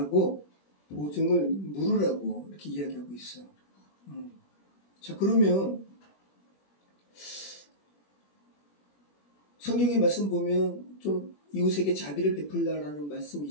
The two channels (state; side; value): late; right; 21 ms